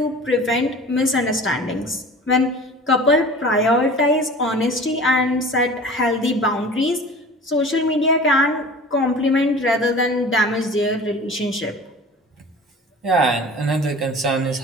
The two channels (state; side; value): normal; both; correlation 0.41